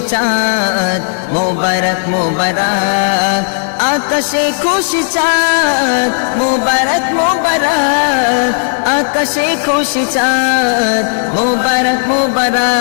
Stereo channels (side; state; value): right; silent; digital silence